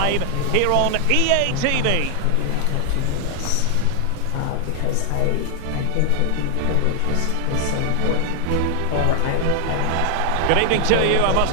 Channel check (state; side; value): different; both; correlation 0.00